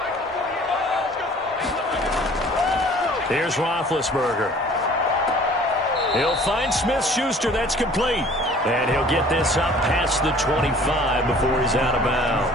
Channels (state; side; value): normal; both; correlation 0.51